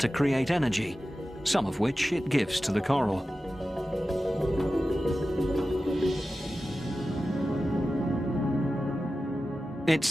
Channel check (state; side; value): normal; both; correlation 0.94